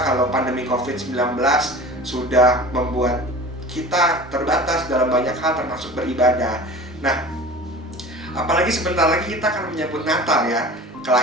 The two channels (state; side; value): normal; both; correlation 0.38